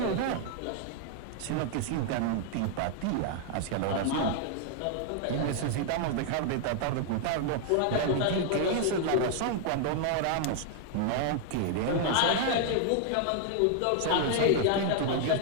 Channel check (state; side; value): different; both; correlation 0.00